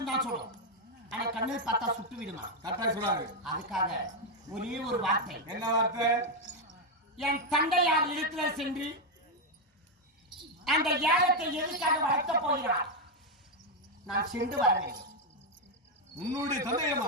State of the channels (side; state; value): both; normal; correlation 0.03